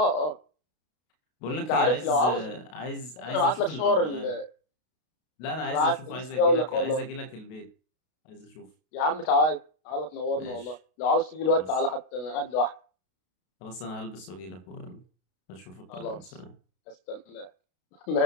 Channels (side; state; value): right; late; 32 ms